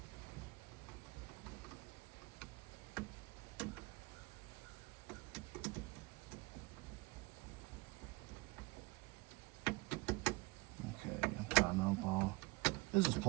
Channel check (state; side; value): quieter; left; 23.1 dB